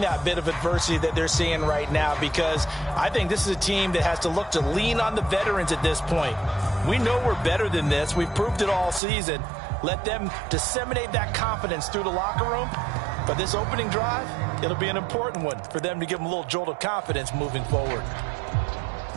that bit of adversity that they're seeing right now? Because I think this is a team that has to look to lean on the veterans at this point. We know we're better than this. We've proved it all season. Let them disseminate that confidence through the locker room. But this opening drive, it'll be an important one for them to give them a little jolt of confidence moving forward.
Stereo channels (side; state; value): left; drops out; at 9.0 s